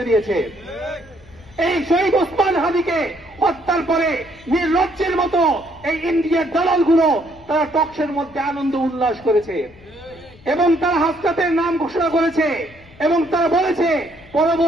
দিয়েছে। এই শহীদ ওসমান হাদিকে হত্যার পরে নির্লজ্জের মতো এই ইন্ডিয়ার দালালগুলো তারা টকশের মধ্যে আনন্দ উল্লাস করেছে এবং তারা হাসনাতের নাম ঘোষণা করেছে এবং তারা বলেছে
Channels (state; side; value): noise; left; rumble, 25 dB below the sound